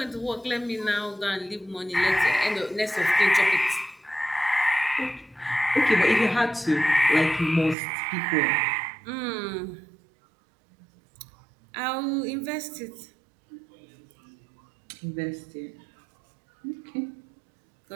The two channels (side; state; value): left; drops out; at 7.8 s